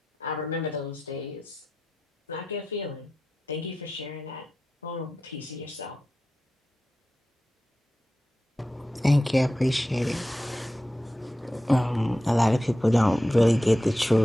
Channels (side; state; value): both; normal; correlation 0.91